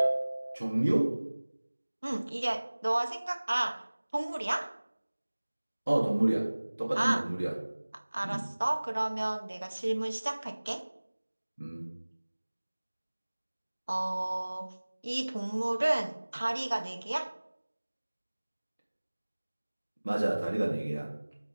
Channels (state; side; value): inverted; both; correlation -1.00